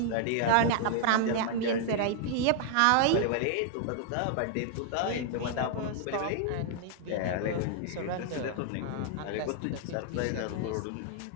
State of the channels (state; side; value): different; both; correlation -0.01